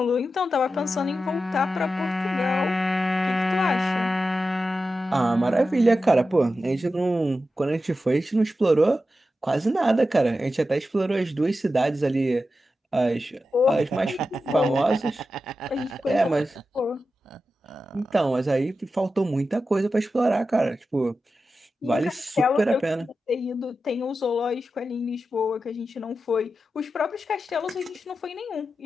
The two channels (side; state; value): both; normal; correlation 0.91